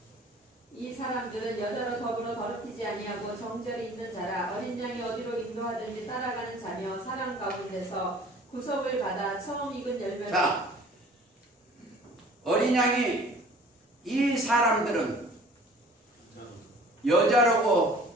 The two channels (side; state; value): both; normal; correlation 0.50